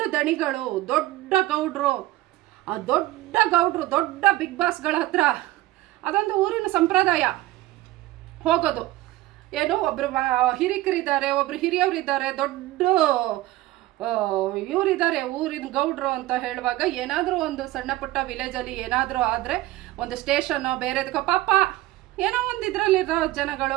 ದಣಿಗಳು, ದೊಡ್ಡ ಗೌಡ್ರು, ಆ ದೊಡ್ಡ ಗೌಡ್ರು, ದೊಡ್ಡ ಬಿಗ್ ಬಾಸ್ಗಳ ಹತ್ರ ಅದೊಂದು ಊರಿನ ಸಂಪ್ರದಾಯ ಹೋಗೋದು. ಏನು ಒಬ್ರು ಹಿರಿಕರಿದ್ದಾರೆ, ಒಬ್ರು ಹಿರಿಯವರಿದ್ದಾರೆ, ದೊಡ್ಡ ಇವರಿದ್ದಾರೆ ಊರಿನ ಗೌಡ್ರು ಅಂತ ಹೇಳುವಾಗ, ಏನಾದರೂ ಒಂದು ಸಣ್ಣ ಪುಟ್ಟ ವಿಲೇಜಲ್ಲಿ ಏನಾದರೂ ಆದರೆ ಒಂದು ಸ್ಟೇಷನ್ನೋ ಬೇರೆದಕ್ಕೋ ಪಾಪ ಏನೋ ಒಂದು ಇದರಲ್ಲಿರೋ ಜನಗಳು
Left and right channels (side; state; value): left; quieter; 17.0 dB